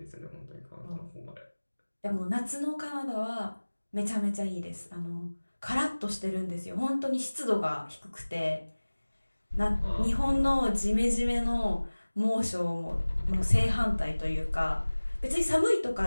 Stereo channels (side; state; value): both; inverted; correlation -1.00